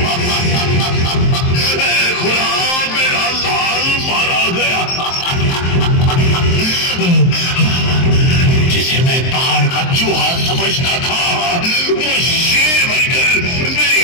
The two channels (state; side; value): late; right; 23 ms